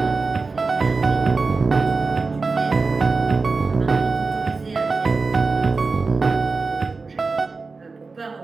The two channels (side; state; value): left; quieter; 4.1 dB